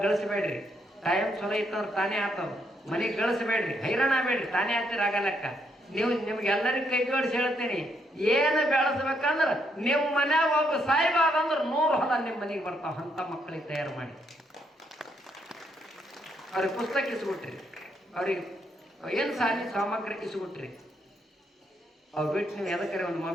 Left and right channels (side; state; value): both; normal; correlation 0.75